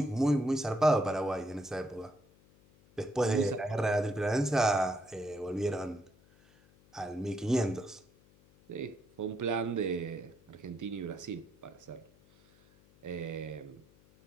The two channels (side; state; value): left; noise; hum, 28 dB below the sound